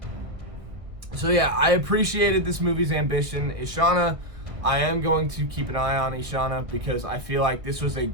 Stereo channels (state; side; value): late; left; 1.5 ms